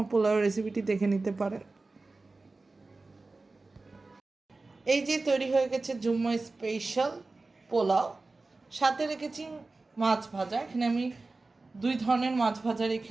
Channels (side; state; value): left; quieter; 3.5 dB